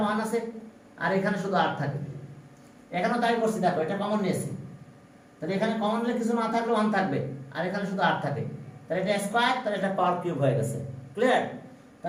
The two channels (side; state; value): both; identical; correlation 1.00